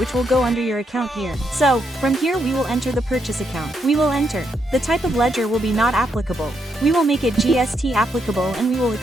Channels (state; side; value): normal; both; correlation 0.79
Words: will go under your account here. So, from here we will enter the purchase account. We will enter. The type of ledger will be not applicable. We will make it GST applicable and we will